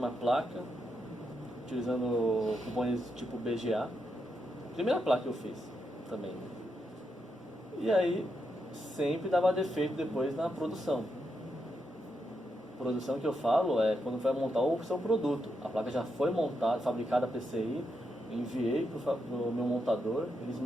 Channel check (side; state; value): both; normal; correlation 0.83